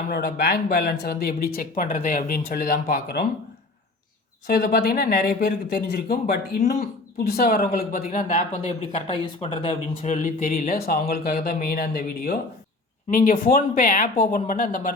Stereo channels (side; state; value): right; quieter; 3.1 dB